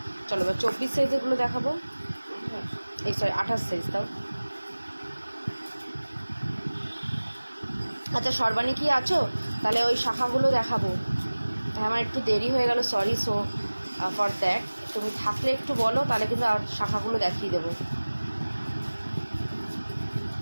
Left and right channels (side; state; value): both; inverted; correlation -1.00